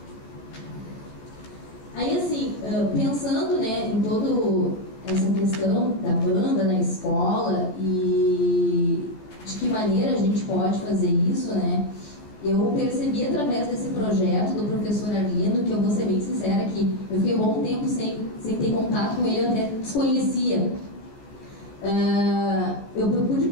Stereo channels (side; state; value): right; late; 14 ms